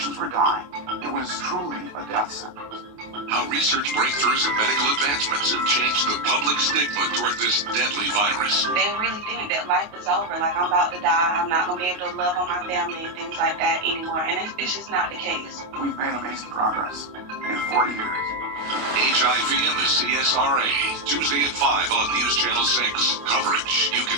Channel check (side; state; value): left; late; 28 ms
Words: were dying. It was truly a death sentence. How research breakthroughs and medical advancements have changed the public stigma toward this deadly virus. They really think that life is over, like I'm about to die, I'm not going to be able to love on my family and things like that anymore, and it's just not the case. We've made amazing progress in 40 years. HIV and the CSRA, Tuesday at 5 on News Channel 6. Coverage you